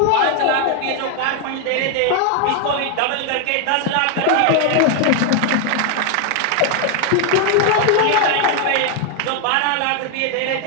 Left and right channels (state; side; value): different; both; correlation 0.01